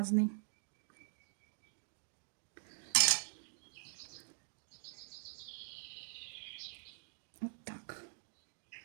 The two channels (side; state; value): left; silent; digital silence